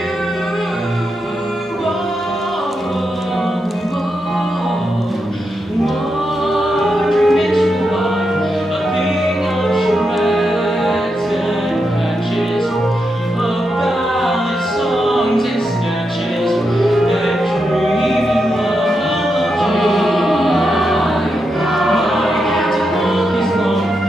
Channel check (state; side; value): normal; both; correlation 0.85